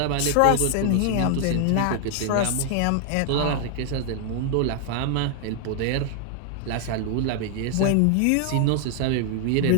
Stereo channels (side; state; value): both; different; correlation 0.00